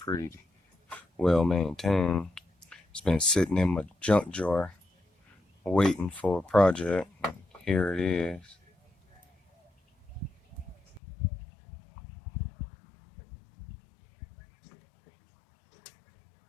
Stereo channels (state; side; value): drops out; right; at 11.0 s